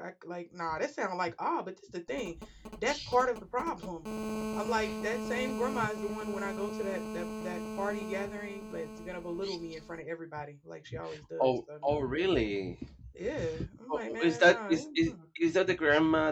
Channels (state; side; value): identical; both; correlation 1.00